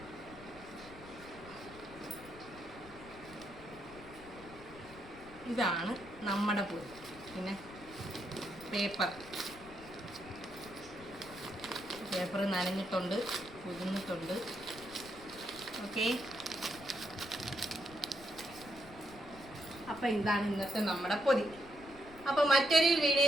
ഇതാണ് നമ്മുടെ പൊതി. പിന്നെ പേപ്പർ നനഞ്ഞിട്ടുണ്ട്, പൊതിഞ്ഞിട്ടുണ്ട്. ഓക്കെ, അപ്പം ഇതാണ് ഇന്നത്തെ നമ്മുടെ പൊതി. അപ്പോൾ മറ്റൊരു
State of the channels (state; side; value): noise; left; rumble, 19 dB below the sound